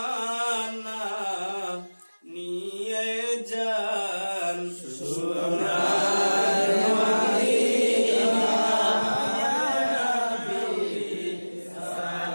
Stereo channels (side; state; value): both; inverted; correlation -1.00